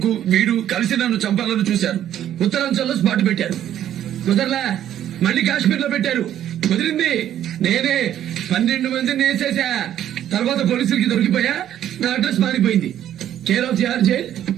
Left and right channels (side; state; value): left; quieter; 11.2 dB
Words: వీడు కలిసి నన్ను చంపాలని చూశారు. ఉత్తరాంచల్లో స్పాట్ పెట్టారు. కుదరలా, మళ్ళీ కాశ్మీర్ లో పెట్టారు. కుదిరింది. నేనే 12 మందిని వేసేసా. తర్వాత పోలీసులకి దొరికిపోయా. నా అడ్రస్ మారిపోయింది. Care of GR jail,